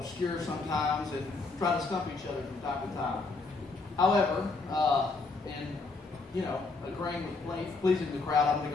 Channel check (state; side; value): quieter; right; 3.8 dB